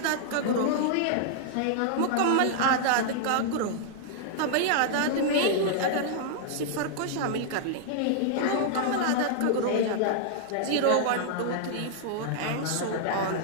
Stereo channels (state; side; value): different; both; correlation -0.01